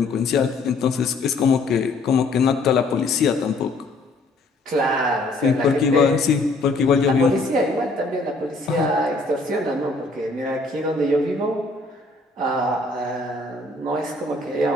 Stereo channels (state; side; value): quieter; right; 3.1 dB